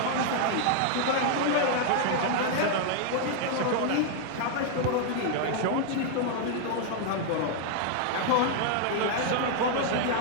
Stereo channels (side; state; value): both; different; correlation 0.00